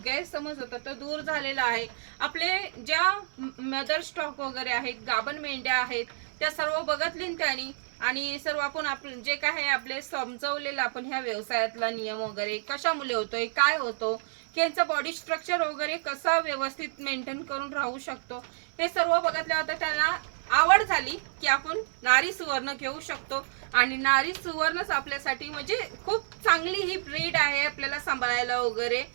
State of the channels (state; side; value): silent; left; digital silence